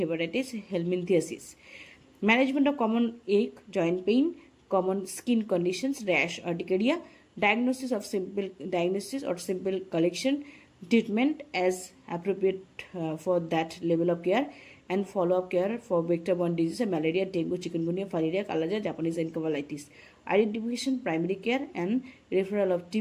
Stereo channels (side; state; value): both; identical; correlation 1.00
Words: hepatitis, helminthiasis. Management of common ache, joint pain, common skin conditions, rash, urticaria, diagnosis or simple collection, treatment as appropriate for that level of care, and follow-up care for vector-borne diseases, malaria, dengue, chikungunya, filaria, kalaja, Japanese encephalitis. Identification, primary care and referral of